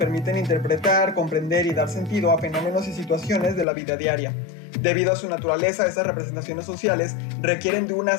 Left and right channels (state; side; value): drops out; right; at 3.7 s